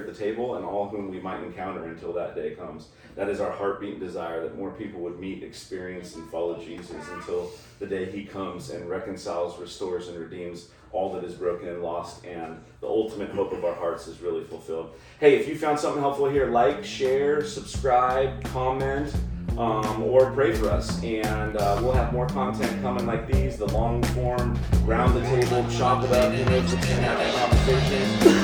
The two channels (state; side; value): identical; both; correlation 1.00